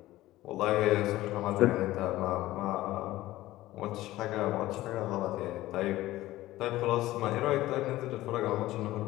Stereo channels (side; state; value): right; quieter; 16.4 dB